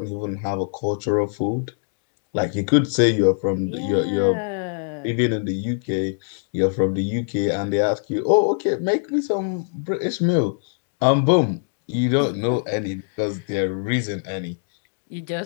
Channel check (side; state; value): right; silent; digital silence